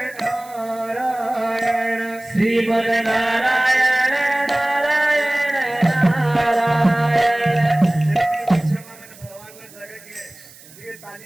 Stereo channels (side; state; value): right; noise; hiss, 22 dB below the sound